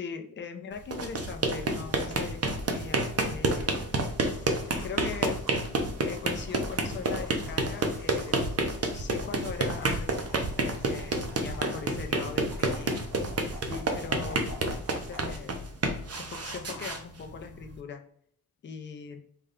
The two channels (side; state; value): both; normal; correlation 0.20